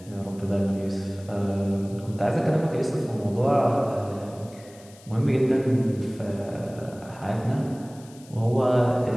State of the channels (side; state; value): left; noise; hiss, 24 dB below the sound